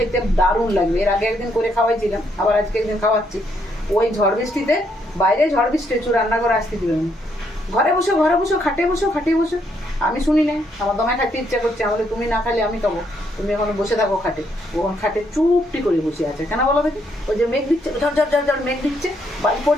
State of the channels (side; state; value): both; normal; correlation 0.74